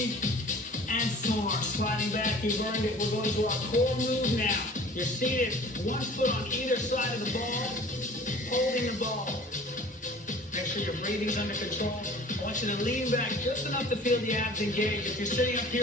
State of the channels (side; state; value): both; normal; correlation 0.46